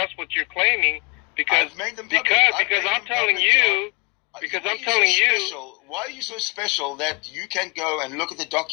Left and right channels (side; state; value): right; quieter; 29.7 dB